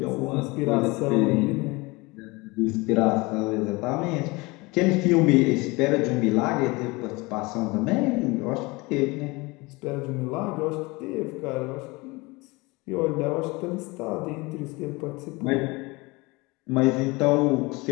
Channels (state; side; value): quieter; right; 24.4 dB